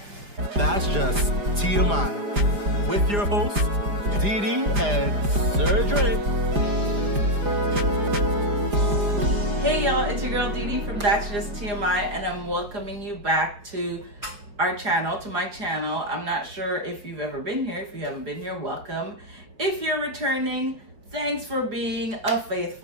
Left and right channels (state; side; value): late; left; 4.9 ms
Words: That's just TMI with your hosts, Dee Dee and Sir Dre. Hey y'all, it's your girl Dee Dee from That's Just TMI, and I'm welcoming you back to our channel, to my channel. I'm not sure if you've ever been here. If you haven't been here, welcome. If you're returning, thanks for being a